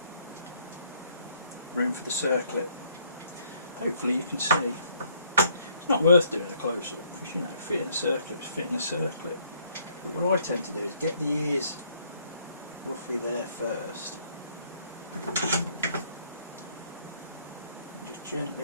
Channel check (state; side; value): inverted; both; correlation -0.65